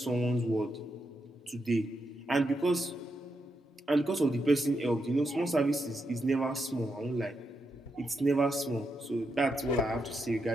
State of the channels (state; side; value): normal; both; correlation 0.84